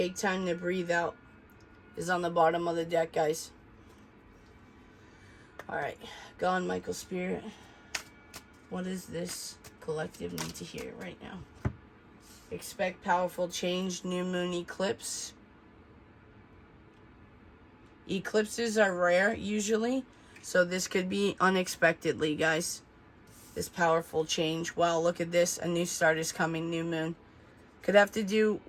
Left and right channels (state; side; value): identical; both; correlation 1.00